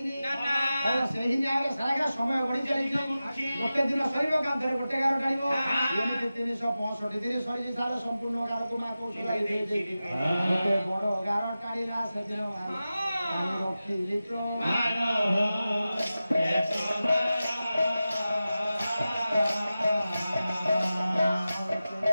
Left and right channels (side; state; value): both; inverted; correlation -0.94